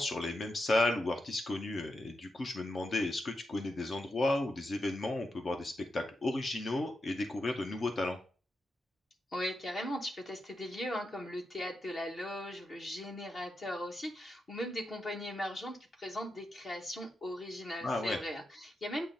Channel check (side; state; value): both; normal; correlation 0.87